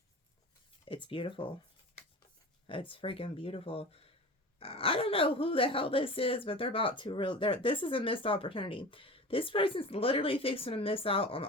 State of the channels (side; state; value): both; normal; correlation 0.35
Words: it's beautiful. It's freaking beautiful. I don't know who the hell this is, but they're about to this is a missed opportunity. This person's literally fixing to miss out on